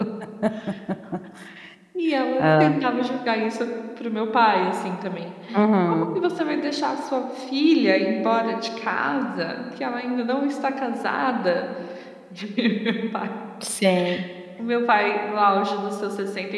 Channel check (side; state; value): both; identical; correlation 1.00